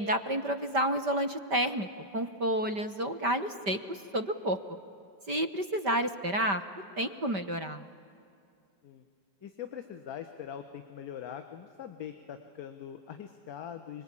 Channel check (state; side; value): late; left; 5.1 ms